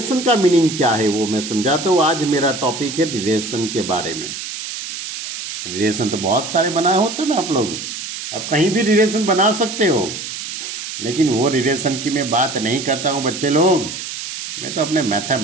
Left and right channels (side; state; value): right; noise; hiss, 7 dB below the sound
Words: का मीनिंग क्या है वो मैं समझाता हूँ। आज मेरा टॉपिक है रिलेशन के बारे में। रिलेशन तो बहुत सारे बनाए होते हैं ना आप लोग, आप कहीं भी रिलेशन बना सकते हो, लेकिन वो रिलेशन की मैं बात नहीं करता हूँ बच्चे लोग। मैं तो अपने